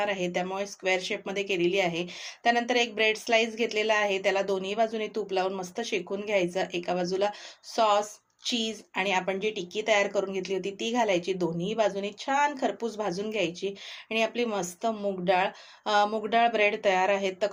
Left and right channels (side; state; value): both; identical; correlation 1.00